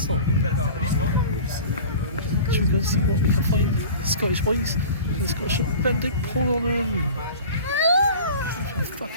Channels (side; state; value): both; inverted; correlation -0.39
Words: stop. Should we go and see what we can find? Scottish ways and the Scottish. Ben, don't pull on them. I'm